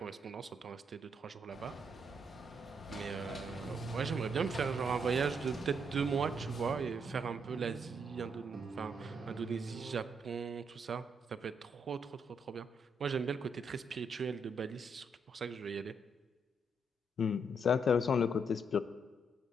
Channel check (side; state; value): both; normal; correlation 0.75